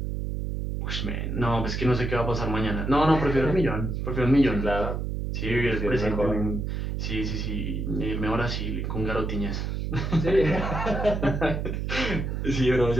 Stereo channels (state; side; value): noise; right; hum, 2 dB below the sound